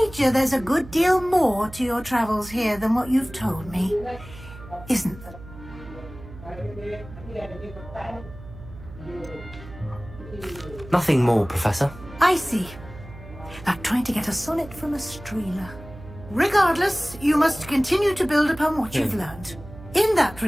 there's a good deal more to your travels here than what you've told me. Isn't there? Nothing more, Professor. I see. Like trying to get a sonnet from a streeler. Regardless, you must continue to build upon what you've learned. In that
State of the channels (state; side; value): noise; right; hum, 16 dB below the sound